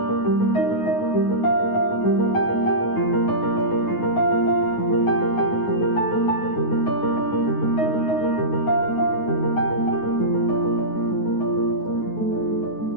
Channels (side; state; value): right; late; 9.5 ms